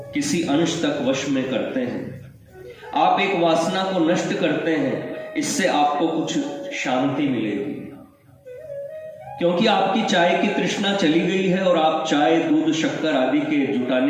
किसी अंश तक वश में करते हैं। आप एक वासना को नष्ट करते हैं, इससे आपको कुछ शांति मिलेगी, क्योंकि आपकी चाय की तृष्णा चली गई है और आप चाय, दूध, शक्कर आदि के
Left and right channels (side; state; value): both; identical; correlation 1.00